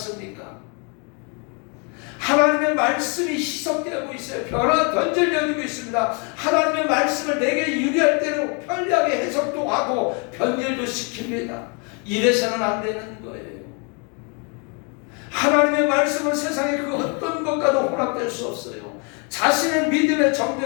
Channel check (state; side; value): quieter; right; 34.9 dB